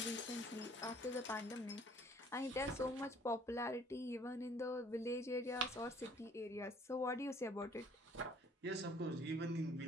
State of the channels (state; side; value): normal; both; correlation 0.57